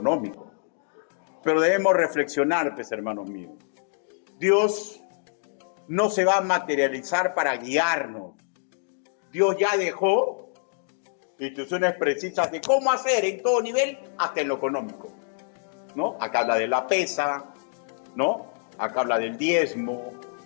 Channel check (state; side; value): silent; right; digital silence